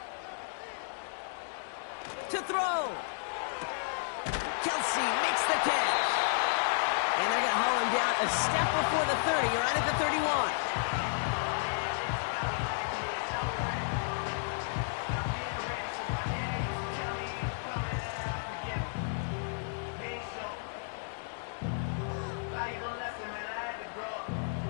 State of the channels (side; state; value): right; silent; digital silence